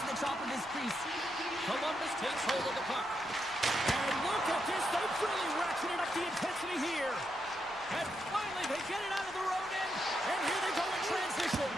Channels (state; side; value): noise; left; rumble, 25 dB below the sound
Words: to the top of his crease. Columbus takes hold of the puck. And look at this. They've really ratcheted up the intensity here. And finally, they get it out of the road end. And here they go in transition.